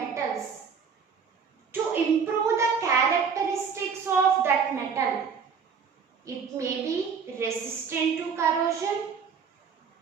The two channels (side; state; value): left; quieter; 6.1 dB